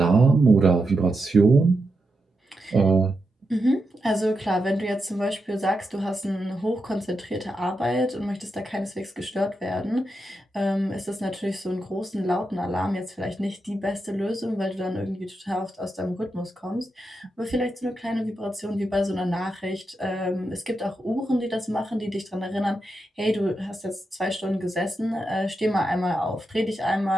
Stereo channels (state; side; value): normal; both; correlation 0.86